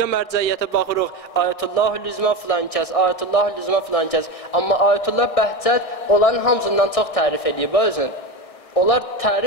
mərcəiyyətə baxırıq, Ayətullahül-Üzma filan kəs, Ayətullahül-Üzma filan kəs. Amma Ayətullah Bəhcət onların hamısından çox tərif edib özün. Onlar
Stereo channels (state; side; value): late; right; 1.6 ms